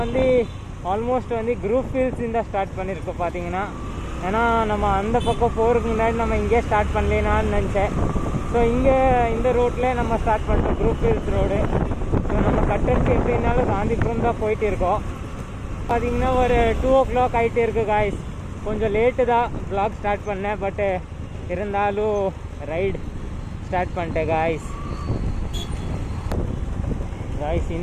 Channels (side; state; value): both; identical; correlation 1.00